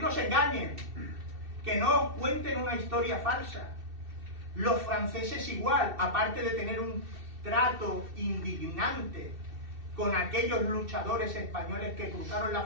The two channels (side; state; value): left; late; 2.7 ms